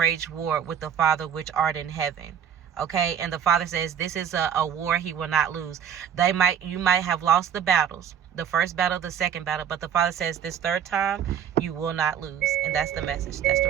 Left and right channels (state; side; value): quieter; left; 8.7 dB